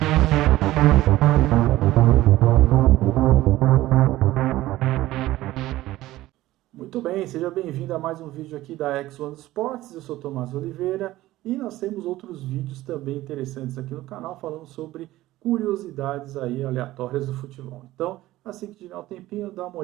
Muito bem, seja bem-vindo a mais um vídeo aqui da X1 Sports. Eu sou Tomás Oliveira e nós temos outros vídeos também interessantes aqui no canal falando sobre curiosidades aí aleatórias do futebol. Então, assim que tiver um tempinho, dá uma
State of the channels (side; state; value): left; quieter; 16.3 dB